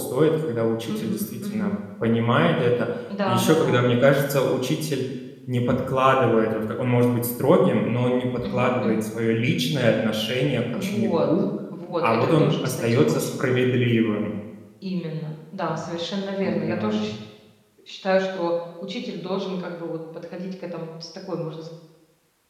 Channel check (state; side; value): identical; both; correlation 1.00